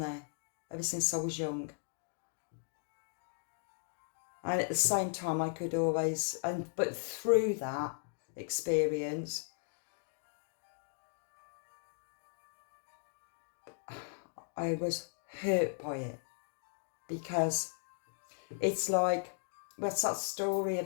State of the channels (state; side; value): silent; right; digital silence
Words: ever since I was young. And at the same time, I could always, but through that experience, I was hurt by it, because it's like, what's that story